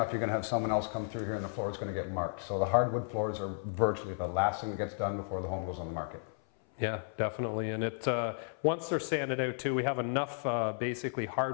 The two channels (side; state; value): right; silent; 55 dB below the other